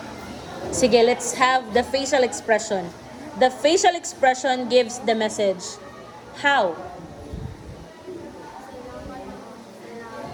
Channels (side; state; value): both; identical; correlation 1.00